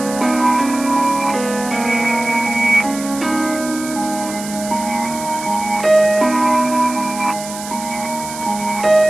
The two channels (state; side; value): noise; right; hiss, 11 dB below the sound